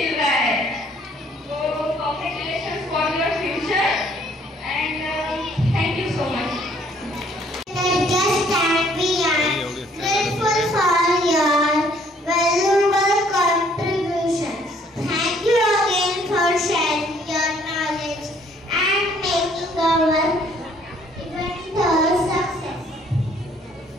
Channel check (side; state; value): both; normal; correlation 0.62